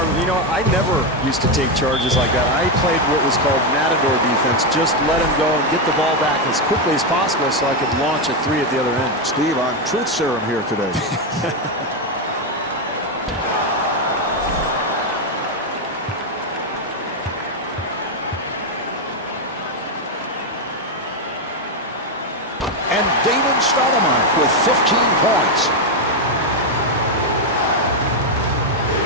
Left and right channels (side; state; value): both; normal; correlation 0.06